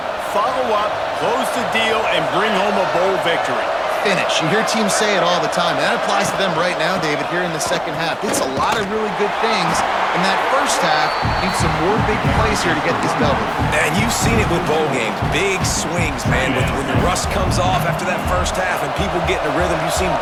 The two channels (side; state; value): both; identical; correlation 1.00